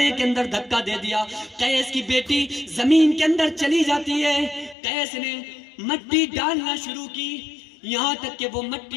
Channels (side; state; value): right; drops out; at 4.8 s